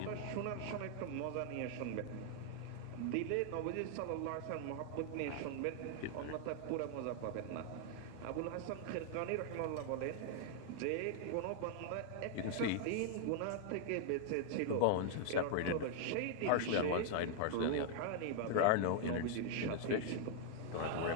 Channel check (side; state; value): both; different; correlation 0.00